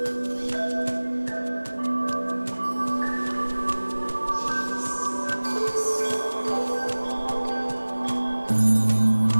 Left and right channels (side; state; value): both; inverted; correlation -1.00